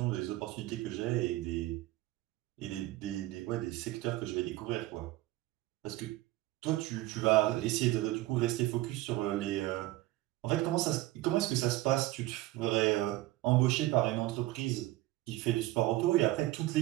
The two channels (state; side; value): quieter; left; 17.5 dB